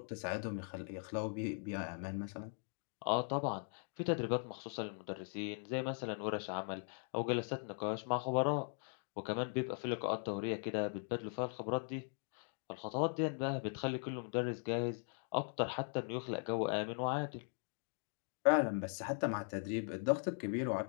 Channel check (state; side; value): silent; right; 51 dB below the other